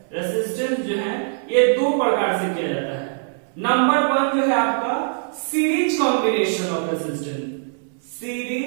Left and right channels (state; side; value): silent; left; 61 dB below the other